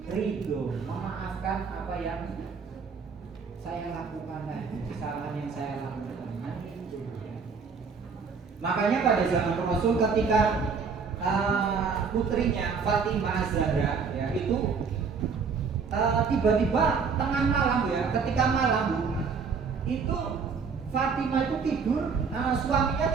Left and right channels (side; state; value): left; quieter; 5.5 dB